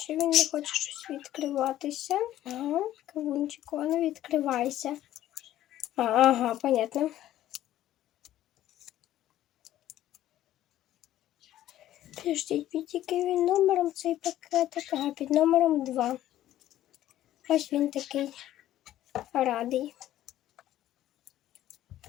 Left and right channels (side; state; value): right; quieter; 13.2 dB